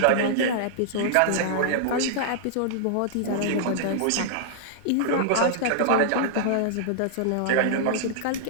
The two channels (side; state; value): both; different; correlation -0.01